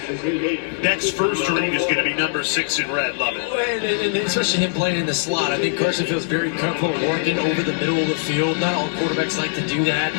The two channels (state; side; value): silent; right; digital silence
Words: Beck's first ring is going to be number 6 in red. Love it. And especially him playing in the slot. I think Carson feels very comfortable working over the middle of the field. Not all quarterbacks like to do that.